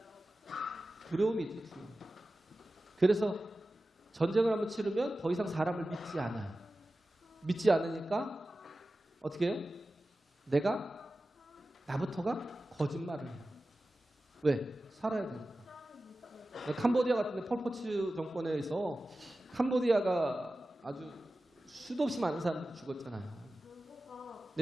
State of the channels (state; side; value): normal; both; correlation 0.95